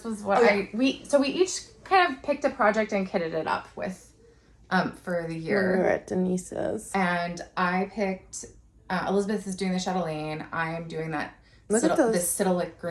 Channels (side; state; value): both; identical; correlation 1.00